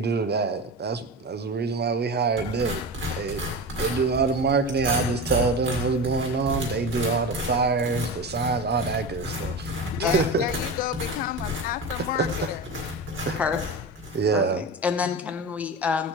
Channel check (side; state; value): both; normal; correlation 0.26